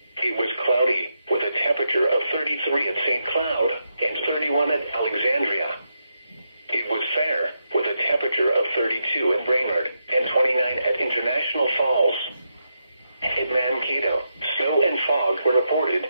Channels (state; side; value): inverted; both; correlation -0.84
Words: It was cloudy with a temperature of 33 at St. Cloud and 31 at Alexandria. It was fair with a temperature of 32 at Brainerd and 29 at International Falls. At Mankato, snow and fog were reported